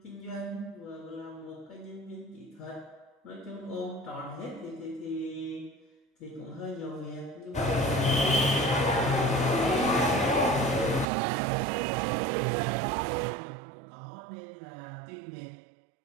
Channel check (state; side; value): drops out; left; at 11.1 s